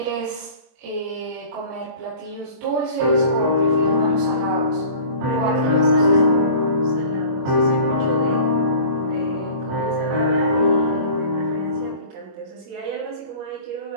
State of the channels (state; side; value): late; left; 26 ms